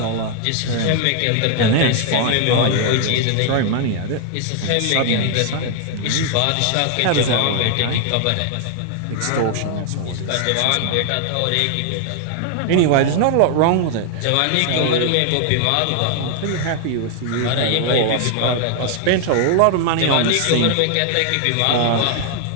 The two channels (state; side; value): different; both; correlation 0.00